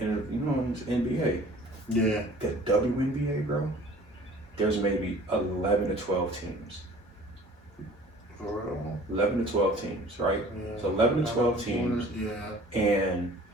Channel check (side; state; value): both; normal; correlation 0.48